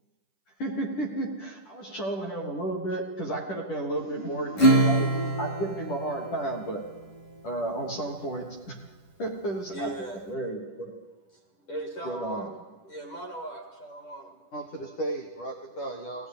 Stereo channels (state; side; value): late; right; 10 ms